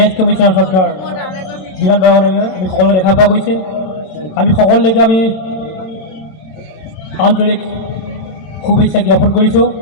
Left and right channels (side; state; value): right; late; 27 ms